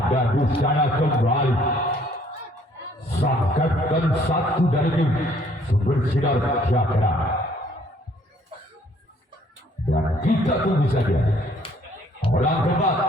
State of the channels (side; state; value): both; normal; correlation 0.62